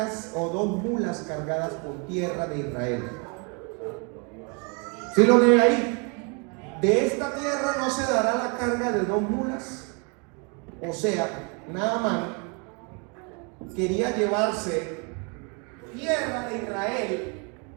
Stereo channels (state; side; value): quieter; left; 34.4 dB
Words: o 2 mulas cargadas con tierra de Israel. ¿Sí lo lee ahí? De esta tierra no se dará la carga de 2 mulas. O sea, Naamán quería llevarse tierra de Israel.